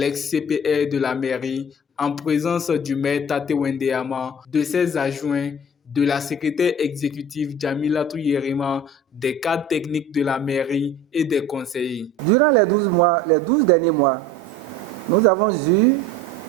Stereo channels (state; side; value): normal; both; correlation 0.41